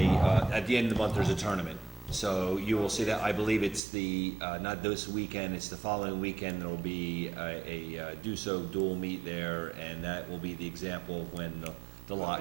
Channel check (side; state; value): left; drops out; at 3.8 s